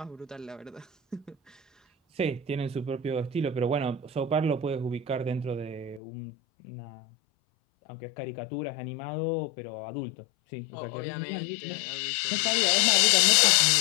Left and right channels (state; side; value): drops out; right; at 6.0 s